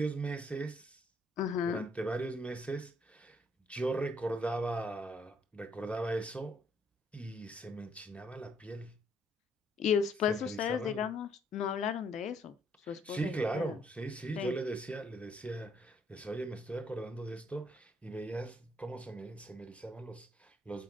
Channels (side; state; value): both; normal; correlation 0.68